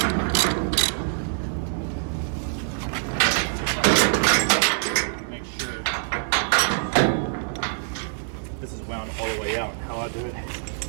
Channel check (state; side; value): silent; left; digital silence